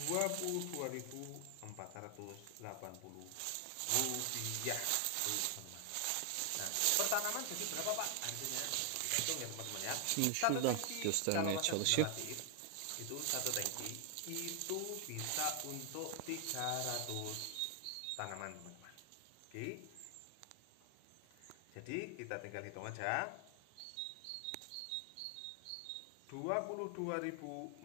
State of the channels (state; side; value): different; both; correlation 0.00